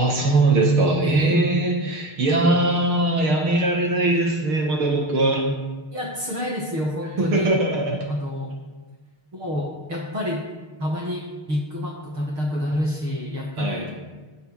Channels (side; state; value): left; late; 6.5 ms